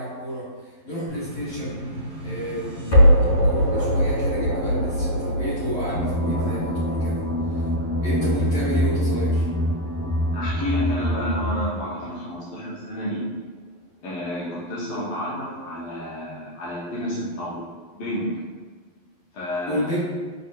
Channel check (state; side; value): late; right; 11 ms